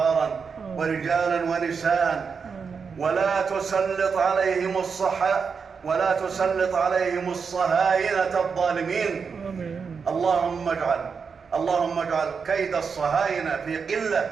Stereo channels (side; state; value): left; quieter; 5.7 dB